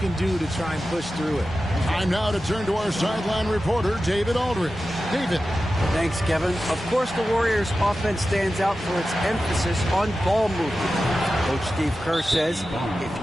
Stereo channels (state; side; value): normal; both; correlation 0.93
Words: do to try and push through it. Time now to turn to our sideline reporter, David Aldridge. David. Thanks, Kevin. Of course, the Warriors' offense stands out for its emphasis on ball movement. Coach Steve Kerr says if